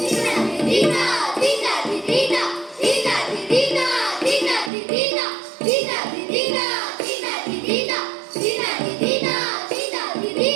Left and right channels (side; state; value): left; drops out; at 4.7 s